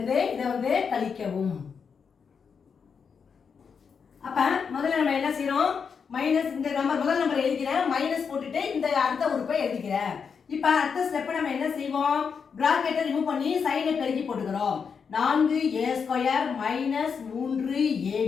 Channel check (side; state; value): right; quieter; 6.2 dB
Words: இதை கழிக்கவும். அப்ப முதல்ல நம்ம என்ன செய்யறோம், மைனஸ் இந்த நம்பர் முதல் நம்பர் எழுதிக்கிறேன், மைனஸ் போட்டுட்டு இந்த அடுத்த உறுப்பை எழுதிக்கிறேன். இப்ப அடுத்த ஸ்டெப் நம்ம என்ன செய்வோம், பிராக்கெட்டை ரிமூவ் பண்ணி சைனை பெருக்கி போட்டுக்கிறோம். 4a² -